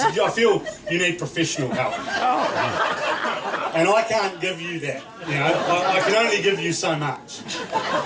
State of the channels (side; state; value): both; identical; correlation 1.00